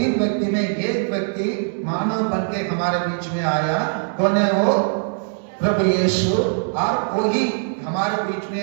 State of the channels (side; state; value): left; silent; 65 dB below the other